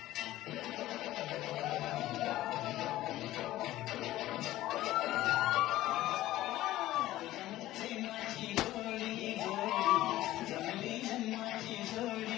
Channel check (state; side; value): quieter; right; 15.4 dB